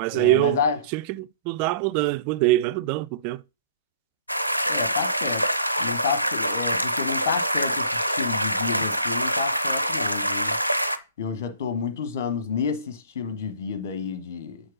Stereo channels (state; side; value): inverted; both; correlation -0.51